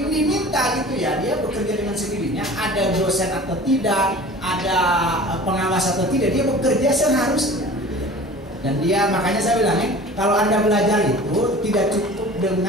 gitu ya, dia bekerja dengan sendirinya, ada dosen atau tidak, ada pengawas atau tidak, dia bekerja seharusnya. Dan dia, makanya saya bilang kalau Anda belajar itu tidak cukup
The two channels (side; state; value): both; normal; correlation 0.41